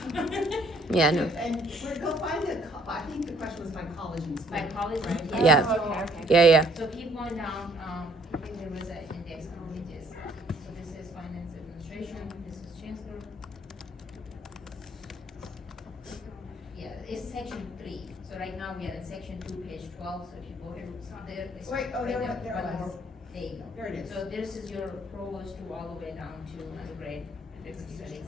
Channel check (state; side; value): normal; both; correlation 0.63